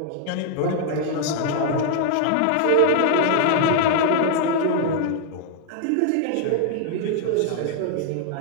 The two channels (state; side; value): different; both; correlation 0.00